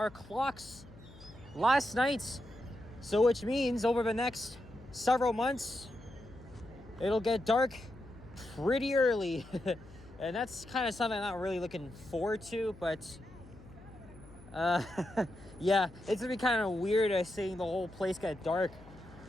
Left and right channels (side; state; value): left; noise; hum, 20 dB below the sound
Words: clocks last night. So which means over the next several months, it'll get dark pretty early. And that's kind of something I'm not really looking forward to, but yeah, it's gonna be kind of weird seeing the whole place get dark